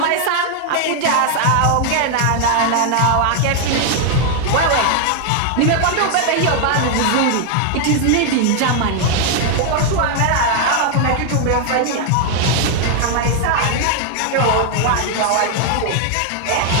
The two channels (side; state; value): both; different; correlation 0.00